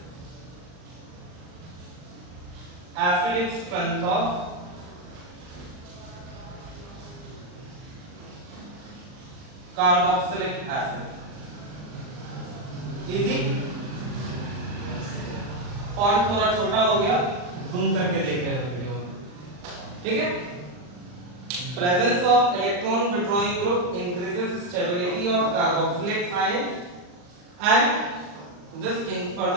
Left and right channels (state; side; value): late; left; 39 ms